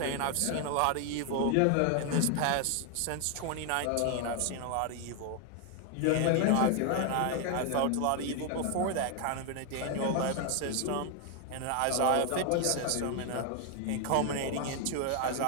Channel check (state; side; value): different; both; correlation 0.00